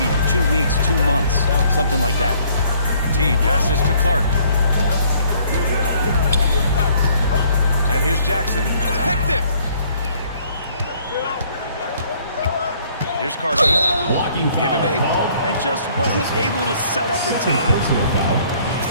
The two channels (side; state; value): both; inverted; correlation -0.61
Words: 2 weeks, 2 months, something like that. T passes to Clark. And here's Jackson. Picked it! Here's Carson. Blocking foul. Give him 8. And just wasn't able to set up in time. Personal foul.